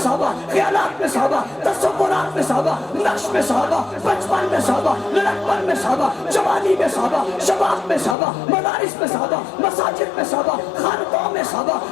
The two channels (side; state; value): right; drops out; at 8.2 s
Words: خیالات میں صحابہ، تصورات میں صحابہ، نقش میں صحابہ، بچپن میں صحابہ، لڑکپن میں صحابہ، جوانی میں صحابہ، شباب میں صحابہ، مدارس میں صحابہ، مساجد میں صحابہ، خانقاہوں میں صحابہ،